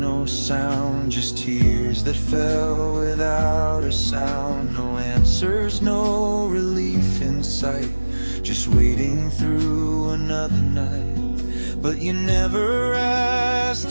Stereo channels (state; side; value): inverted; both; correlation -1.00